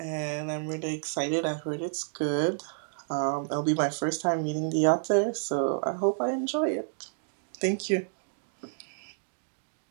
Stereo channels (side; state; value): left; silent; digital silence